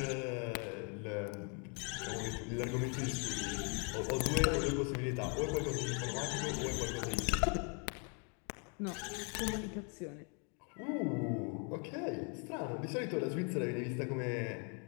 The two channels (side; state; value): right; quieter; 37.6 dB